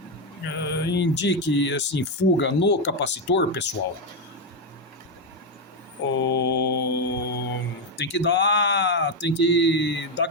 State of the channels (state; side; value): normal; both; correlation 0.06